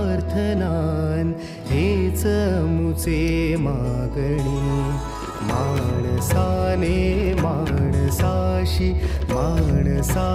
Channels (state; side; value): identical; both; correlation 1.00